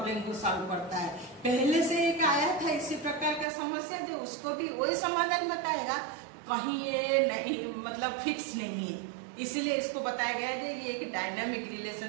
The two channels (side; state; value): left; drops out; at 3.5 s